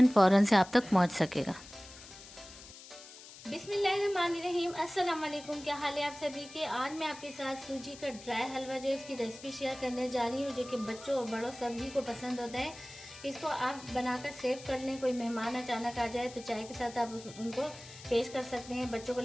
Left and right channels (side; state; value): left; noise; hiss, 17 dB below the sound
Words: फ़ौरन से आप तक पहुंच सकेगा। बिस्मिल्लाहिर्रहमानिर्रहीम, अस्सलाम वालेकुम। क्या हाल है आप सभी के। आज मैं आपके साथ सूजी का ड्राई हलवा जो है उसकी रेसिपी शेयर करने जा रही हूँ, जो कि बच्चों और बड़ों सभी को पसंद होता है। इसको आप बनाकर सेव कर लें। कोई मेहमान अचानक आ जाए तो चाय के साथ आप उनको पेश कर सकते हैं। बच्चों को